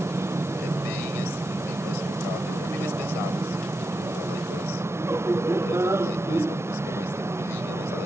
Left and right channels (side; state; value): both; normal; correlation 0.87